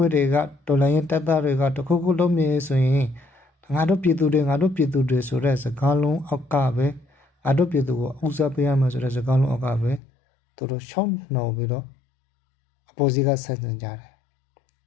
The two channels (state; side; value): drops out; right; at 10.0 s